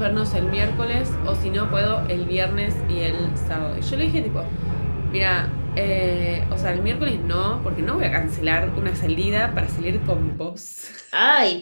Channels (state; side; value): inverted; both; correlation -1.00